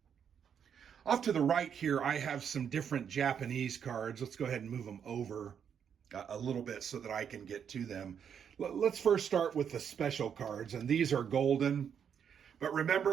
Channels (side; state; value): left; quieter; 7.9 dB